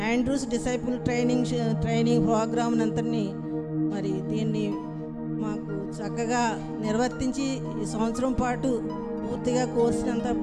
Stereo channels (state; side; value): identical; both; correlation 1.00